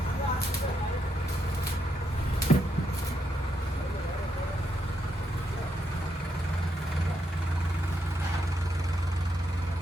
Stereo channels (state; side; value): normal; both; correlation 0.80